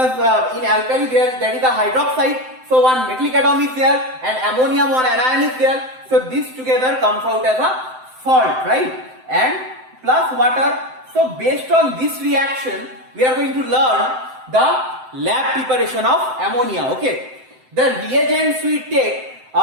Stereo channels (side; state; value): left; late; 7.8 ms